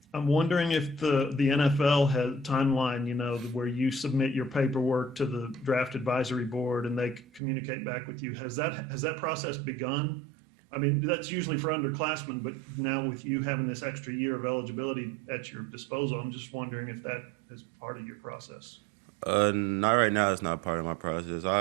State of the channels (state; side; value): drops out; left; at 7.4 s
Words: I'm wondering if the NFL has timeline, where you submit your paperwork to the draft advisory board and they communicate back with you. Has that process begun? I mean, that's usually for underclassmen, but now with you having this extra year of eligibility at your disposal, I'm just wondering if that is part of your process. Not right now. It's not part of my process.